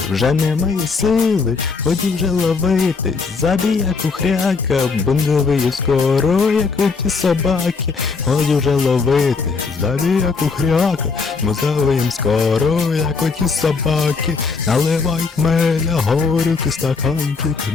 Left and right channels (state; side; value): quieter; right; 4.7 dB